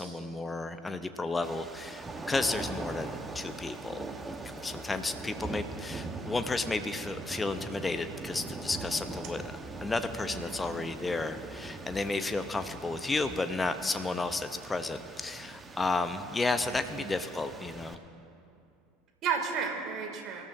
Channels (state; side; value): normal; both; correlation 0.77